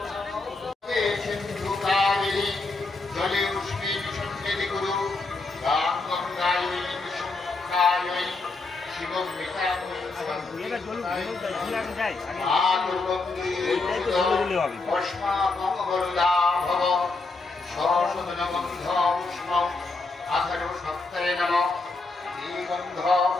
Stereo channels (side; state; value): right; quieter; 3.6 dB